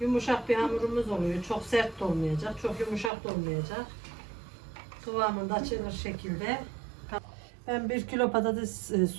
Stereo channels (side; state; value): left; drops out; at 3.1 s